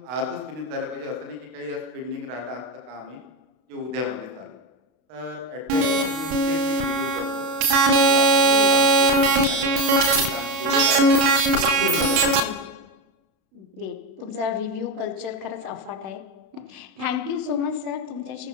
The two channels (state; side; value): late; left; 32 ms